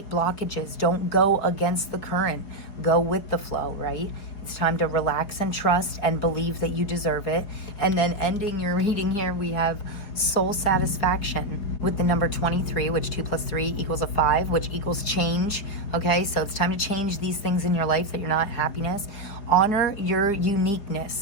blockages. Don't go against the current. Go with the flow, right? It's time to relax and trust and believe that you deserve it. And then ending your reading here, we have soul satisfaction with the number 23, which 2 plus 3 equals a 5, which equals change. Okay, so it's time to change these things in your life that you're not happiness. Honor your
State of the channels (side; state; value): right; late; 4.8 ms